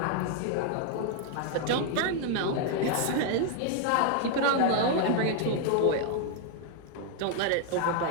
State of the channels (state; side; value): different; both; correlation 0.00